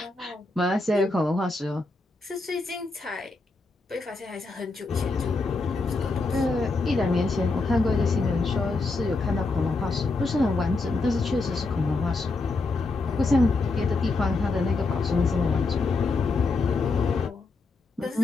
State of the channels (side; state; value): right; quieter; 3.5 dB